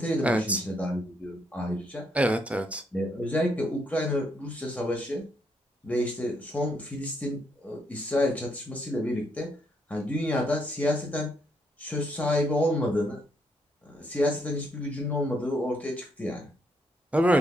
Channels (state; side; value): normal; both; correlation 0.74